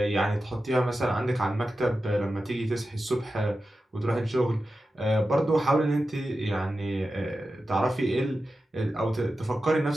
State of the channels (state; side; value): normal; both; correlation 0.92